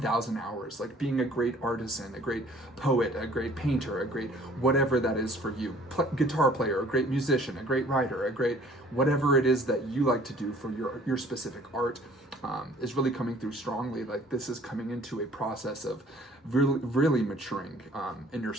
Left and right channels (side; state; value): both; normal; correlation 0.54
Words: hours, like being a great artisan, a great poet, a great painter, a great whatever that is for you, guitar player, a great musician, a great writer, a great whatever it is that you like to do for your specific art, is really coming through strongly. Like this is coming into a process of really maturing in your